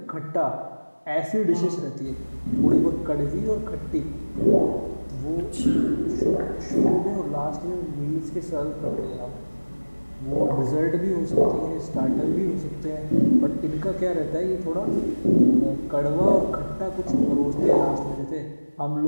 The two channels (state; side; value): inverted; both; correlation -1.00